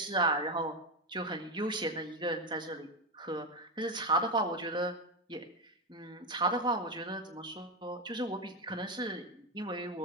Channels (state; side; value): normal; both; correlation 0.12